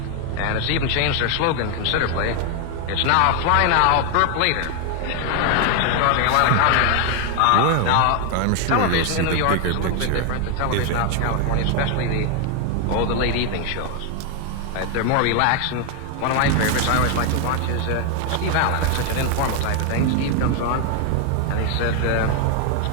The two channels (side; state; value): both; different; correlation 0.01